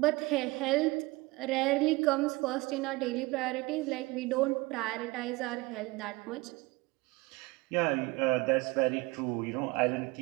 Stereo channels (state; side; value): quieter; left; 22.7 dB